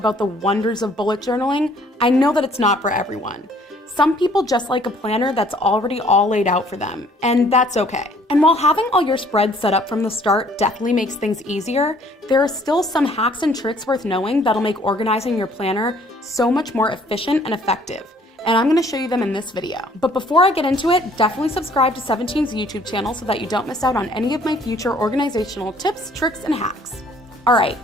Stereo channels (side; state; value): both; normal; correlation 0.59